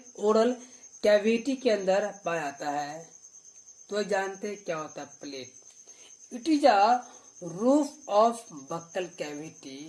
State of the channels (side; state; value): both; identical; correlation 1.00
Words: ओरल कैविटी के अंदर पाया जाता है। तो जानते हैं क्या होता है palate. It is a roof of buccal cavity